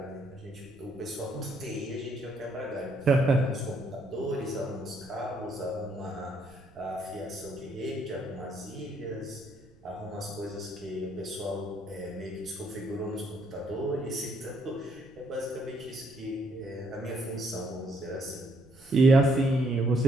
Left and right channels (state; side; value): noise; right; rumble, 26 dB below the sound